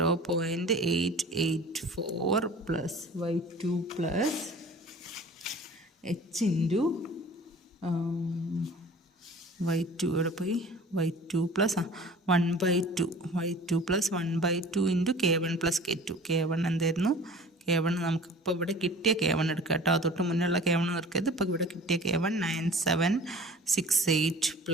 plus y2 plus h into y2 ഇവിടെ പോയി y2 plus 1/2 y2 plus 1/2 into K1 plus K1 എന്തായിരുന്നു? K1 നമുക്കിപ്പോൾ ഇവിടെ കിട്ടിയ K1 എടുക്കുക കേട്ടോ. തൊട്ട് മുന്നുള്ള K1 എടുക്കരുത്. ഇപ്പോൾ ഇവിടെ കിട്ടിയ K1 9768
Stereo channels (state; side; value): normal; both; correlation 0.44